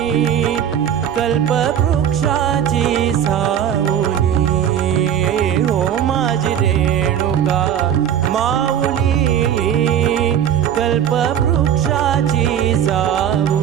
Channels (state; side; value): quieter; left; 9.5 dB